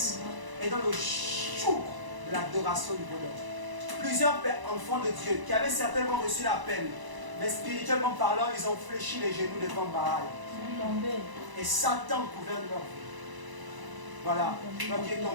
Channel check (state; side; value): late; left; 1.0 ms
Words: est dans le joug de l'adoration du bonheur. Plusieurs enfants de Dieu qui avaient certainement reçu l'appel, mais spirituellement parlant, ils ont fléchi les genoux devant Baal. Et Satan gouverne leur vie. Voilà, toi qui es